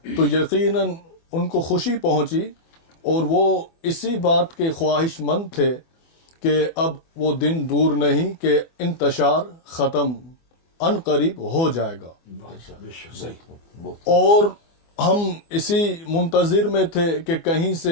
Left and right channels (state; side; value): late; right; 24 ms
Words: تو یقیناً ان کو خوشی پہنچی اور وہ اسی بات کے خواہش مند تھے کہ اب وہ دن دور نہیں کہ انتشار ختم ان قریب ہو جائے گا. اور ہم اسی منتظر میں تھے کہ کہیں